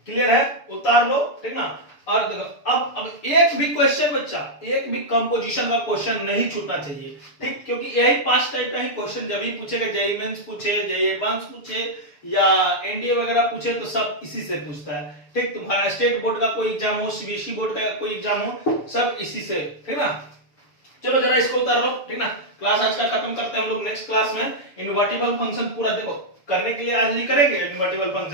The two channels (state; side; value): late; right; 6.9 ms